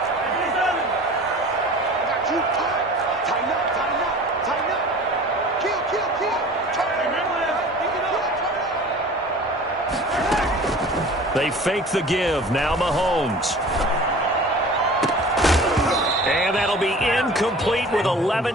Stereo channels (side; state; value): both; normal; correlation 0.42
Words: They fake the give. Now Mahomes. And that'll be incomplete with